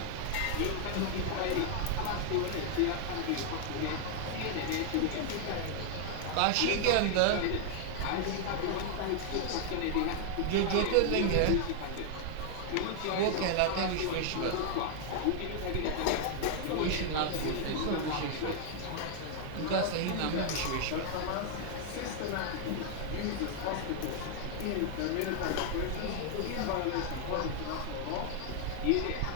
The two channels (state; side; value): different; both; correlation 0.00